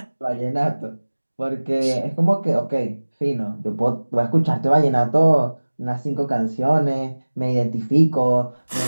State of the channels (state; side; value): inverted; both; correlation -1.00